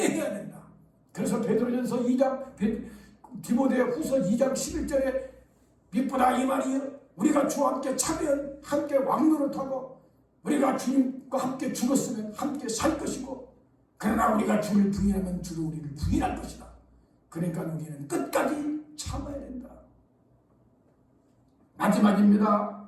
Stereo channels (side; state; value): both; identical; correlation 1.00